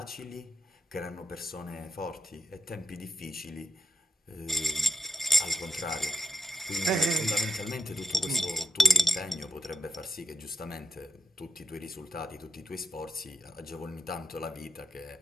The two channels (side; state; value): both; normal; correlation 0.83